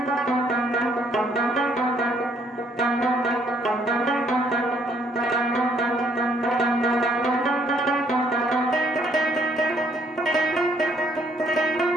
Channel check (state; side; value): normal; both; correlation 0.67